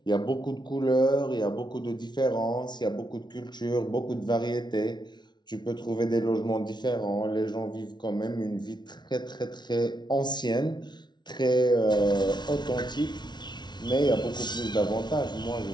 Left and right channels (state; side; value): late; right; 0.20 ms